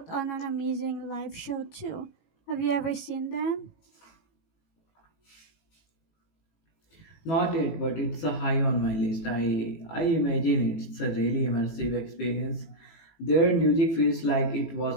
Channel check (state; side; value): late; right; 18 ms